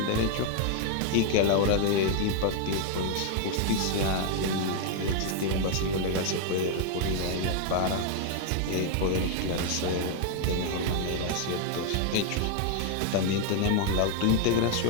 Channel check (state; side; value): different; both; correlation 0.00